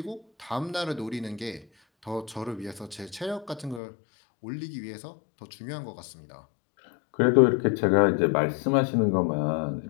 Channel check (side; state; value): right; drops out; at 3.8 s